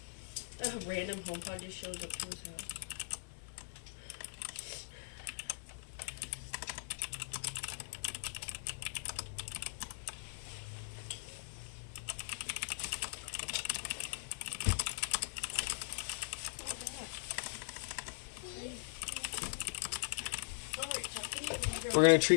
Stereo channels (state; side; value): silent; right; digital silence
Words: A random HomePod just shows up to his house. We're gonna